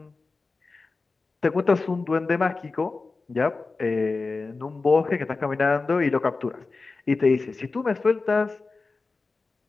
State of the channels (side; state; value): right; quieter; 3.9 dB